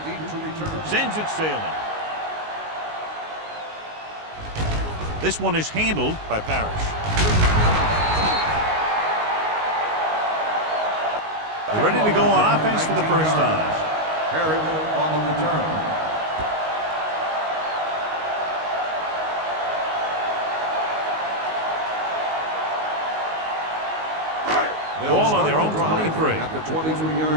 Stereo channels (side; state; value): left; late; 19 ms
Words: deep to return. Sends it sailing. This one is handled by Parrish. They're ready to go on offense for the first time. Harris on the return. Ball on their own 23. At the